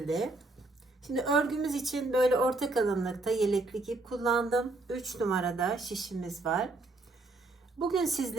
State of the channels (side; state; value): left; quieter; 3.1 dB